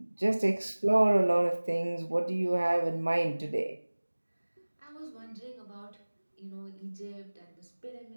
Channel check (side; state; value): both; inverted; correlation -1.00